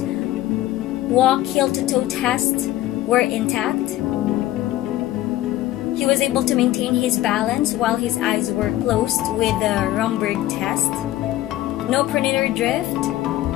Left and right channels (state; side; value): quieter; right; 14.8 dB